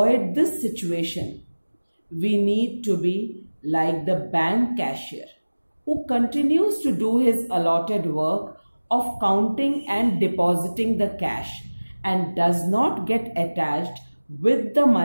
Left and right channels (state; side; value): inverted; both; correlation -1.00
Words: this situation, we need to be like the bank cashier who continues to do his allotted work of counting and depositing the cash and does not get attached with the